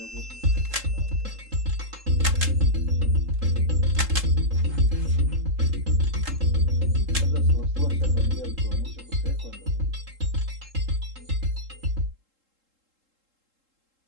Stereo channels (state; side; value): late; left; 3.7 ms